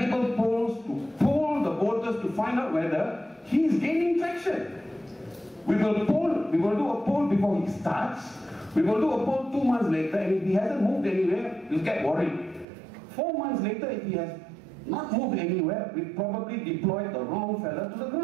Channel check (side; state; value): left; drops out; at 12.7 s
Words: polls to poll the voters to find out whether he is gaining traction. We will do a poll before he starts. We will do a poll 2 months later, and if he hasn't moved anywhere, we'll get worried. 4 months later, if he has not moved anywhere, we probably deployed the wrong fella to the